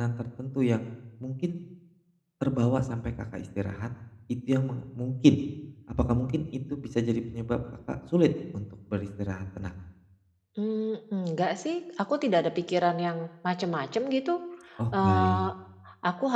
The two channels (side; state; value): both; identical; correlation 1.00